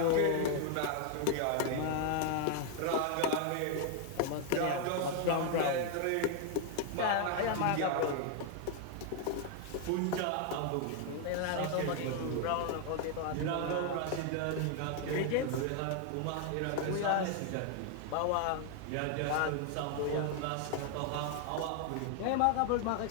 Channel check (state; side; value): different; both; correlation 0.00